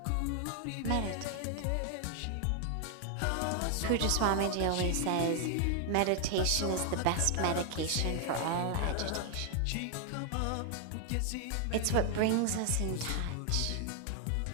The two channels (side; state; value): both; different; correlation 0.00